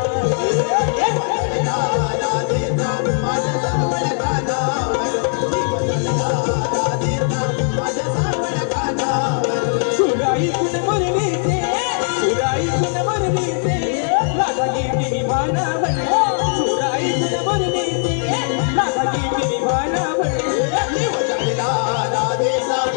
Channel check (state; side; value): silent; right; digital silence